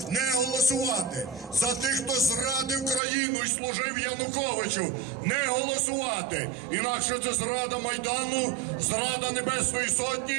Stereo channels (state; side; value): drops out; left; at 3.0 s